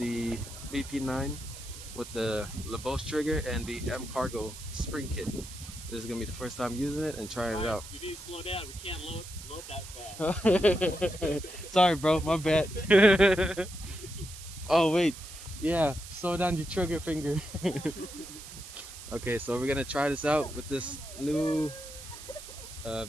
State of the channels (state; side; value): noise; right; hiss, 14 dB below the sound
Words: VP9 with the lobos trigger and the m-carbo spring kit, this is gonna be the first time using it and trying it out. You need to slow down. We can't load that fast. Sorry bro, my bad. Oh wait, yeah, slow down your trigger finger. Okay, so we're gonna try this out with this new